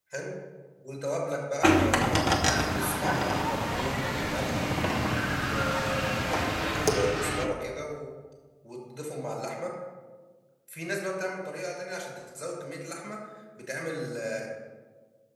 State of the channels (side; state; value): both; identical; correlation 1.00